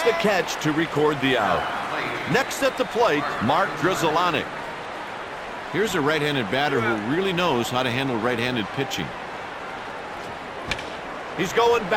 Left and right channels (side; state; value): both; identical; correlation 1.00